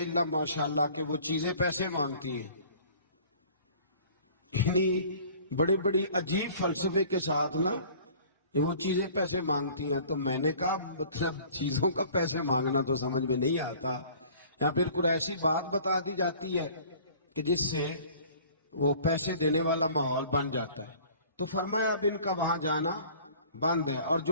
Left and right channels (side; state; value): both; inverted; correlation -0.49